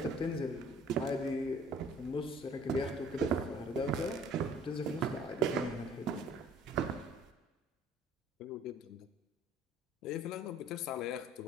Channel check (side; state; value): both; normal; correlation 0.53